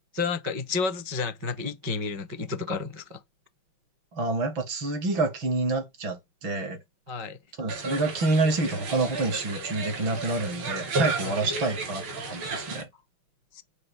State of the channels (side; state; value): left; late; 6.0 ms